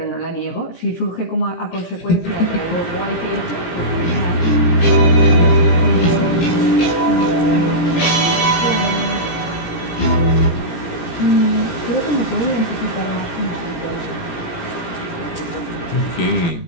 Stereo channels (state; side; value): late; right; 17 ms